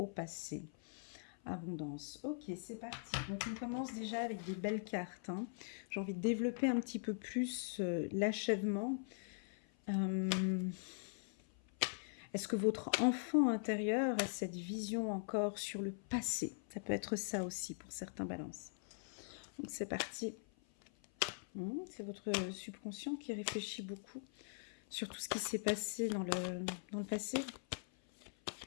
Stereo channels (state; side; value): silent; right; 50 dB below the other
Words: passé. Abondance. Ok, c'est parti. Donc, on commence déjà avec des belles cartes. Hein. J'ai envie de développer un petit peu plus l'achèvement. Est-ce que votre enfant intérieur a cette vision encore sur le passé? Ça peut être ça aussi pour certains balances. Donc, c'est parti. C'est votre subconscient qui réfléchit beaucoup sur tout ce qui s'est passé dans le passé.